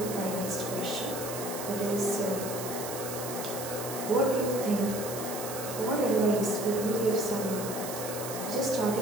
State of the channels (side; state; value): right; noise; hiss, 8 dB below the sound